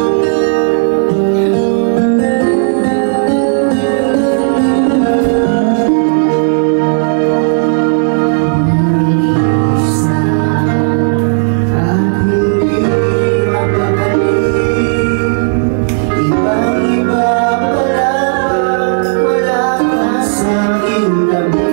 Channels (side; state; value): left; silent; digital silence